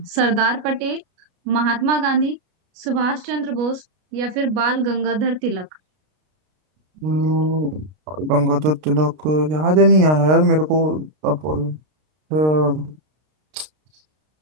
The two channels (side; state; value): left; late; 33 ms